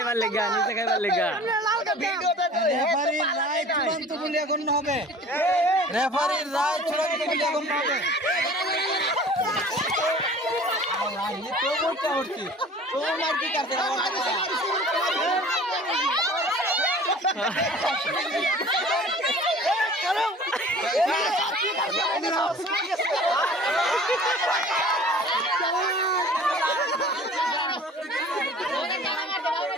লেগা রেফারির রায় চূড়ান্ত বলে গণ্য হবে রেফারির রায় চূড়ান্ত বলে গণ্য হবে তো বলতে হচ্ছে তো মার কি করতে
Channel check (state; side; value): normal; both; correlation 0.45